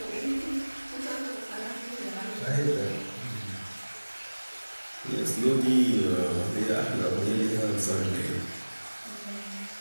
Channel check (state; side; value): inverted; both; correlation -1.00